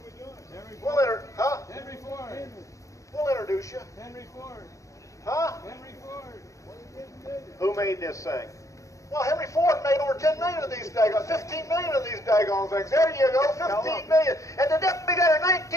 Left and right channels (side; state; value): right; late; 0.15 ms